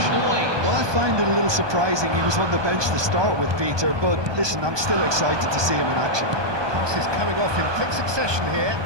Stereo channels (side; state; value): left; late; 1.2 ms